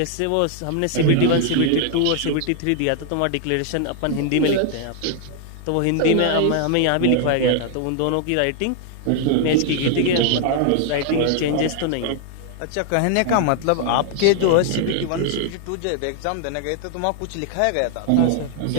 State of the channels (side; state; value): both; different; correlation 0.00